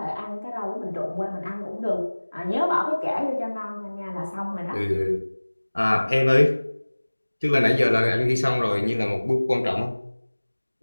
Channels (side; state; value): both; inverted; correlation -1.00